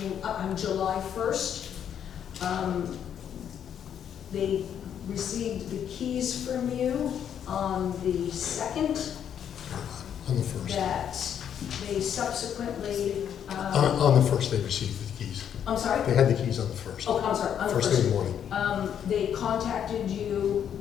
July 1st. They received the keys from you on the 2nd. On the first. That they subsequently, On the first, they received the keys. I'm sorry? They had the keys on the first. Oh, I'm sorry, on the First thing in the morning. They contacted you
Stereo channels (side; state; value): right; quieter; 9.0 dB